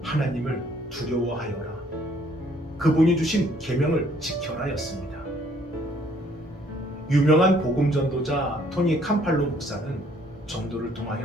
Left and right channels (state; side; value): normal; both; correlation 0.63